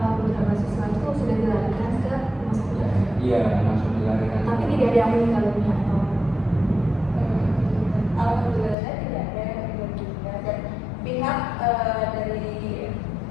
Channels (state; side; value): drops out; right; at 8.8 s